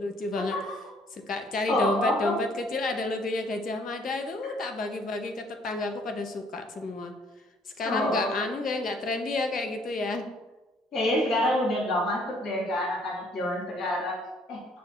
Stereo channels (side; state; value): both; normal; correlation 0.62